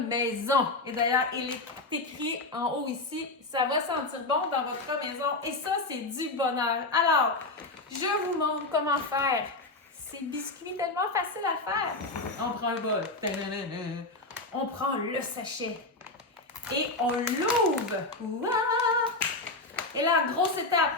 maison. Et d'ailleurs, il est écrit en haut ici, ça va sentir bon dans votre maison. Et ça, c'est du bonheur. Alors, je vous montre comment faire ces biscuits tellement faciles à faire. On prend un bol. On prend le sachet. Et on l'ouvre. Ouah! Et là, grosse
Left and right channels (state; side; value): quieter; right; 3.1 dB